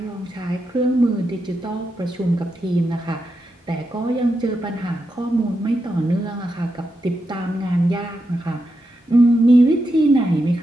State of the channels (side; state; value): both; normal; correlation 0.86